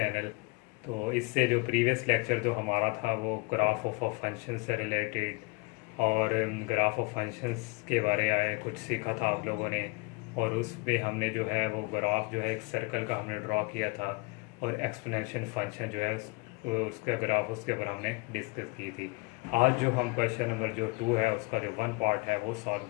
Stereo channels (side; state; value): right; quieter; 28.1 dB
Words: तो इससे जो प्रीवियस लेक्चर जो हमारा था वो ग्राफ ऑफ फंक्शन से रिलेटेड और ग्राफ ऑफ फंक्शंस के बारे में कुछ सीखा था आप लोगों ने। और उस पे हमने जो है वो ग्राफ जो है एक सर्कल का हमने ड्रॉ किया था और एक्सपोनेंशियल फंक्शन जो है उसका ग्राफ उसके ऊपर हमने डिस्कस की थी। आज जो हम क्वेश्चन नंबर जो 2 है उसका जो 1 पार्ट है वो सॉल्व